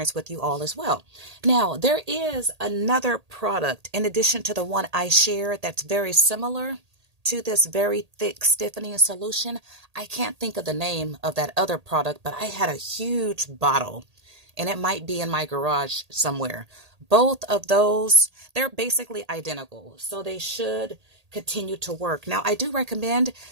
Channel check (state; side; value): late; left; 1.8 ms